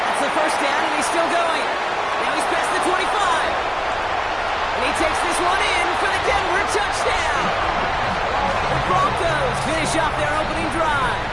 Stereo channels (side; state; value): both; identical; correlation 1.00